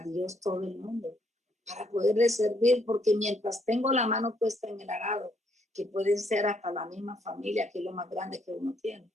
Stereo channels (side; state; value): both; normal; correlation 0.71